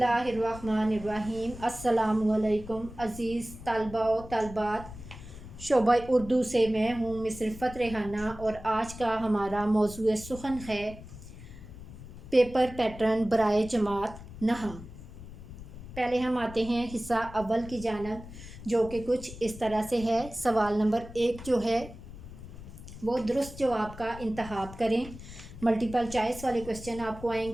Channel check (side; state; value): left; noise; rumble, 14 dB below the sound